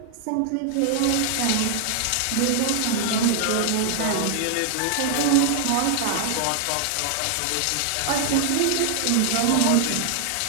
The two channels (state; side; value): different; both; correlation 0.00